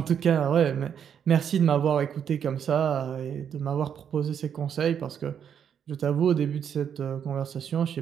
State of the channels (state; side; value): quieter; left; 8.2 dB